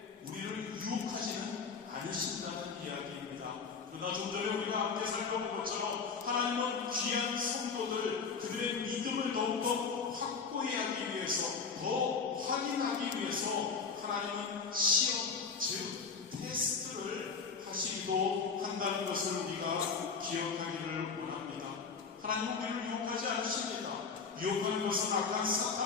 우리를 유혹하지는 않으신다는 이야기입니다. 그러나 좀 전에 우리가 함께 살펴본 것처럼 하나님은 귀한 성도들 그들의 믿음을 더욱더 확고히 하기 위해서 더 확인하기 위해서 하나님은 시험 즉 테스트를 하시기도 한다는 것을 우리가 기억하기를 원합니다. 하나님은 우리를 유혹하지 않으십니다. 유혹하는 것은 악한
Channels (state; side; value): quieter; right; 5.4 dB